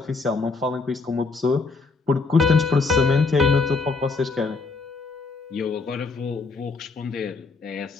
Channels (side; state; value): right; quieter; 4.1 dB